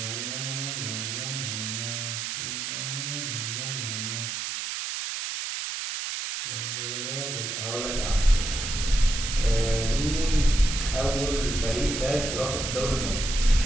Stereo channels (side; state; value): right; noise; hiss, 3 dB below the sound